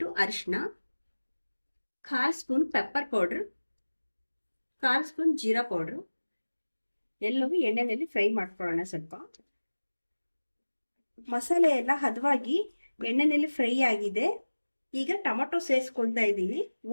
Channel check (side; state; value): both; inverted; correlation -1.00